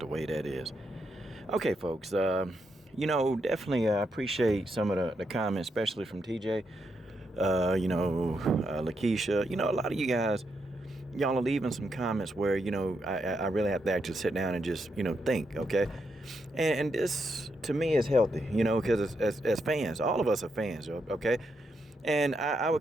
way that is. Okay, folks, definitely appreciate some of the comments, especially from TJ, Lakeisha. A lot of you guys, y'all are leaving some comments where, I really have to actually sit down and just, think, okay? And this, to me, is healthy, because as fans, all of us are fans, okay? And I would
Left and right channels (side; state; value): both; normal; correlation 0.81